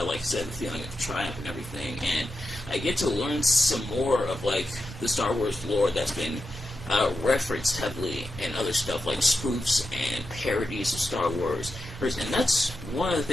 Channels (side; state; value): both; normal; correlation 0.88